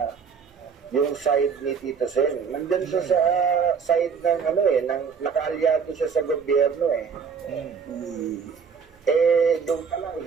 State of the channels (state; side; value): quieter; left; 6.2 dB